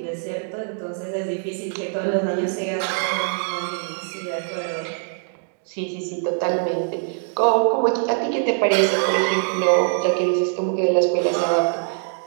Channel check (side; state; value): left; silent; 58 dB below the other